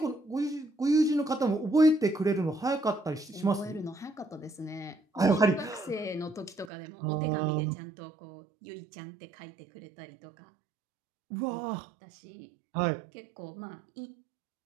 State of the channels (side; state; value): left; drops out; at 6.7 s